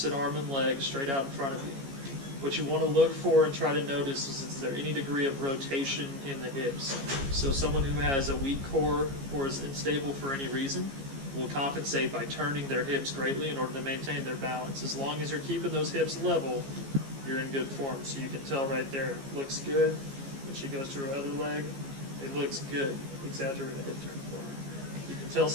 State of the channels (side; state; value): left; late; 15 ms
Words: arm and leg straight out in front of you. What you want to look for and try to notice is there any degree of rotation in the hips. So someone who has a weak core or is unstable for any reason will compensate by turning their hips greatly in order to maintain their balance. As long as you're keeping those hips level, you're in good form. So you can tell right there, looks good. When she goes to her other leg, it looks good. Exaggerate the hip turn for her. You can tell